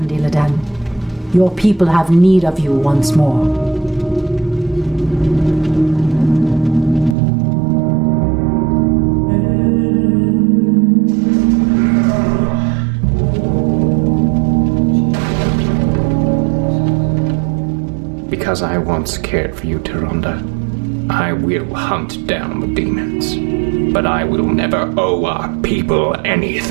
Illidan. Your people have need of you once more. Because I once cared for you, Tyrande, I will hunt down the demons. But I will never owe our people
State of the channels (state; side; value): drops out; left; at 7.2 s